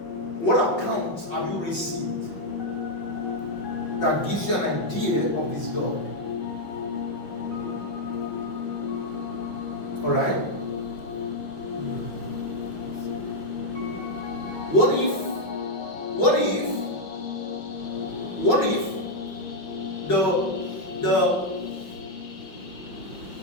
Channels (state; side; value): late; right; 5.6 ms